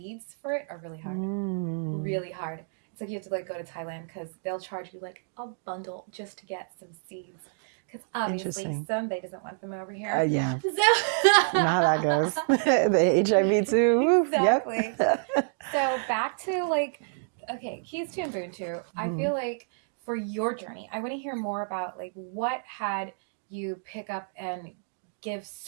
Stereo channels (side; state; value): left; silent; digital silence